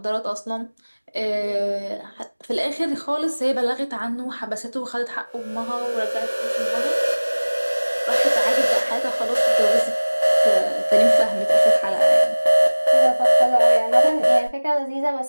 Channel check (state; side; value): inverted; both; correlation -1.00